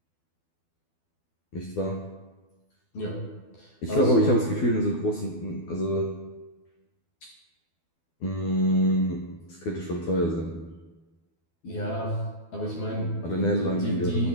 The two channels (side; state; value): right; late; 12 ms